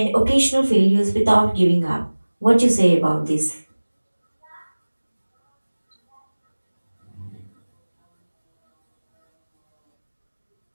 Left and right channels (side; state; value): both; inverted; correlation -1.00